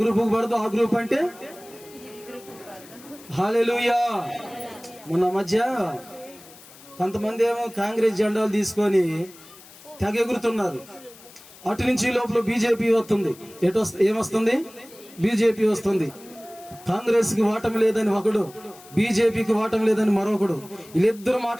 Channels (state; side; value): noise; left; hiss, 21 dB below the sound